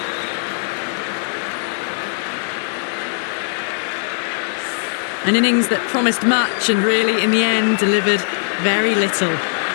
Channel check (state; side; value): silent; right; 66 dB below the other